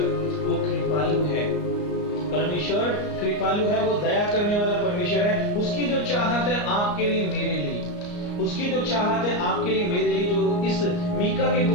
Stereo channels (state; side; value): late; right; 34 ms